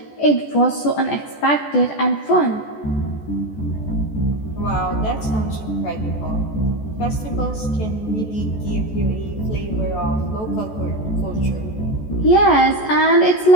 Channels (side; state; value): right; late; 14 ms